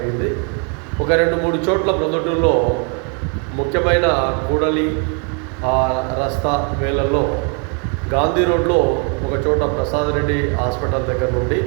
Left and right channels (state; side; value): quieter; left; 37.7 dB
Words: ఒక 2-3 చోట్ల ప్రొద్దుటూరులో ముఖ్యమైన కూడలి రస్తా వేళల్లో గాంధీ రోడ్లో ఒక చోట ప్రసాద్ రెడ్డి హాస్పిటల్ దగ్గర నుండి,